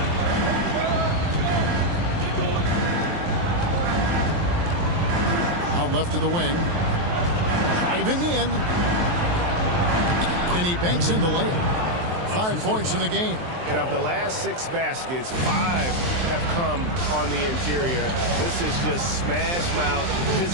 Out left to the wing. Driving in. And he banks in the layup. 5 points in the game. And of the last 6 baskets, 5 have come on the interior. This is just smash mouth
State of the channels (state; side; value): late; left; 23 ms